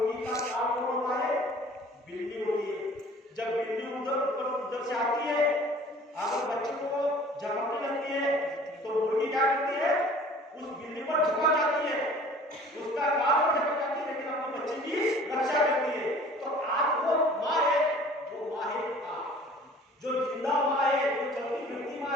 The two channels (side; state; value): both; normal; correlation 0.48